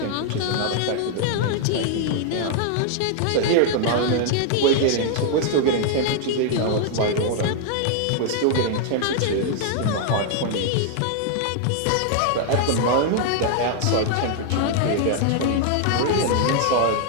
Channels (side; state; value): both; different; correlation 0.00